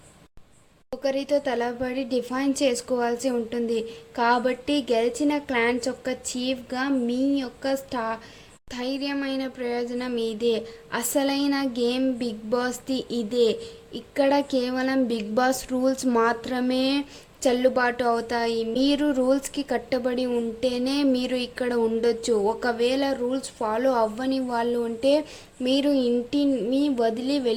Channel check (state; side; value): identical; both; correlation 1.00